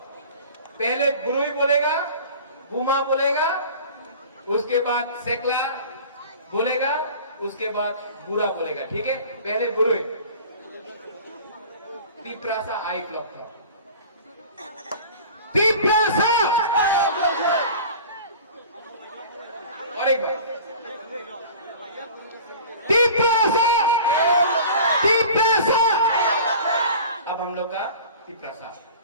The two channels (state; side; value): inverted; both; correlation -0.41